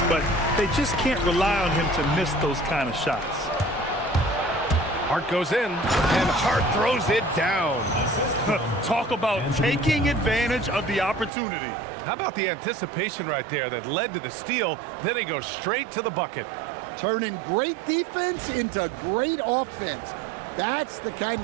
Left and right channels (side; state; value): left; drops out; at 11.3 s